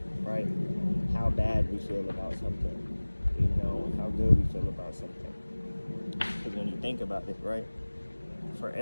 right? How bad we feel about something, how good we feel about something. Because when you think about it, right, for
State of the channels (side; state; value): both; inverted; correlation -1.00